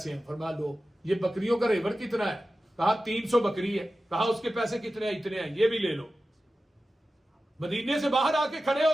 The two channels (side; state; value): both; normal; correlation 0.94